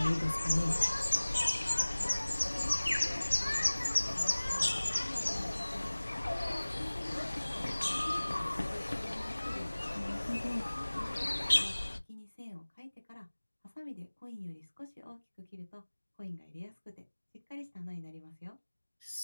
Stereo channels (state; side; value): inverted; both; correlation -1.00